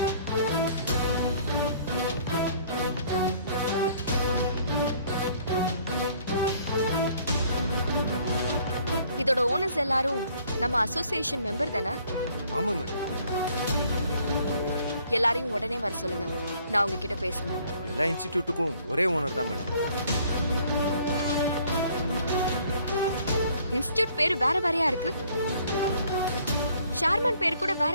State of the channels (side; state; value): both; inverted; correlation -0.59